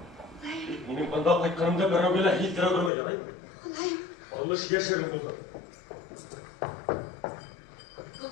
Benim banda qaytqanımda birovga hiltira ko'rmagan, aymi? Xudoyim. Alış yashirin bo'ldi.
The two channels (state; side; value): drops out; right; at 2.9 s